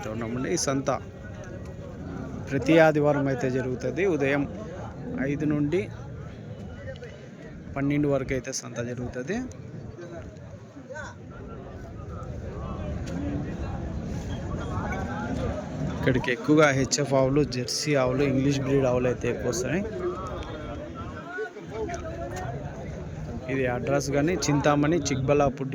ఉన్నామండి. ఈ సంత ప్రతి ఆదివారం అయితే జరుగుతుంది. ఉదయం 5 నుండి 12 వరకు అయితే సంత జరుగుతుంది. ఇక్కడికి ఎక్కువగా హెచ్ఎఫ్ ఆవులు, జెర్సీ ఆవులు, ఇంగ్లీష్ బ్రీడ్ ఆవులు అయితే ఎక్కువ వస్తాయి. ఇది అడ్రస్ కానీ చింతామణి, చిక్బల్లాపూర్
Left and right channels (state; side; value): identical; both; correlation 1.00